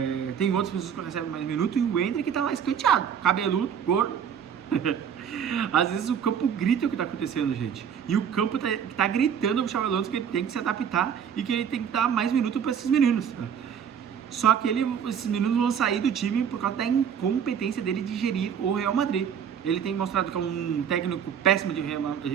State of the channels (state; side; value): quieter; left; 8.0 dB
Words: tem outras pessoas que recebem mais minutos, e o Endrick tá lá escanteado, cabeludo, gordo. Às vezes o campo grita o que tá acontecendo, gente. E o campo tá gritando pro Xabi Alonso que ele tem que se adaptar e que ele tem que dar mais minutos para esses meninos. Só que esses meninos vão sair do time por causa da incompetência dele de gerir o Real Madrid. Ele tem mostrado que é um técnico péssimo de